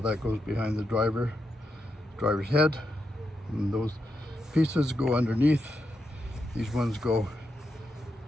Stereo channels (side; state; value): both; normal; correlation 0.84